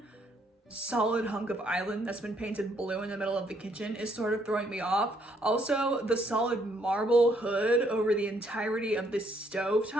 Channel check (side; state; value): both; normal; correlation 0.70